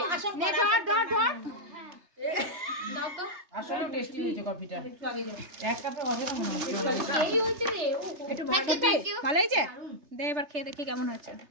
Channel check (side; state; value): left; late; 3.3 ms